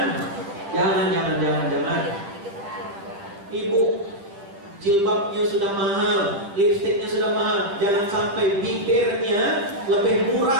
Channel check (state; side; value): late; left; 10 ms